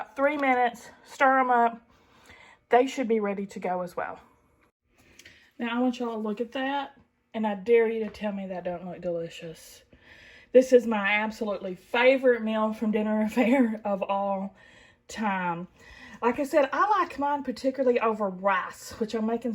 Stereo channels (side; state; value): both; identical; correlation 1.00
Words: 3 minutes, stir them up. They should be ready to go as well. Now I want y'all to look at that, and I dare you to tell me that don't look delicious. This is my absolutely favorite meal from Dinner Affair of all time. Like I said, I like mine particularly over rice, which I'm making